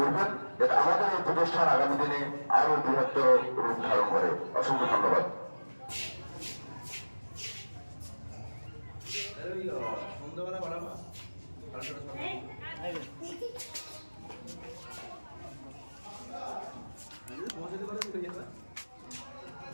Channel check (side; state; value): both; inverted; correlation -1.00